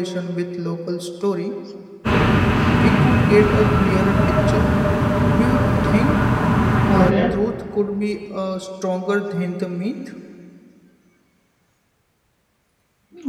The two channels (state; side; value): identical; both; correlation 1.00